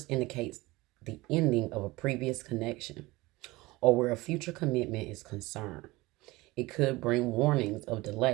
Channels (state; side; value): quieter; left; 20.9 dB